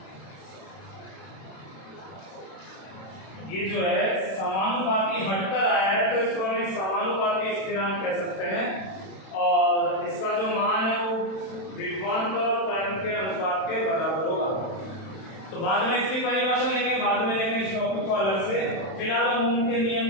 ये जो है समानुपाती हटकर आया है, तो इसको हम एक समानुपाती स्थिरांक कह सकते हैं। और इसका जो मान है वो विभवांतर और करंट के अनुपात के बराबर होगा। तो बाद में इसकी परिभाषा लेंगे, बाद में लेंगे इस टॉपिक को अलग से। फिलहाल हम ओम के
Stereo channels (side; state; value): right; late; 31 ms